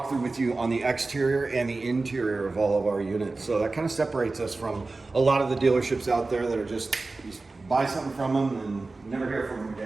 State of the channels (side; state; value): left; quieter; 3.5 dB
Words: with you on the exterior and the interior of all of our units. So that kind of separates us from a lot of the dealerships out there that are just, you buy something from them and never hear from them